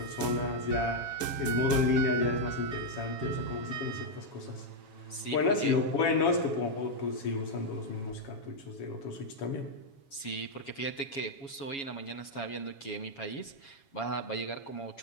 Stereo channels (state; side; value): late; right; 7.3 ms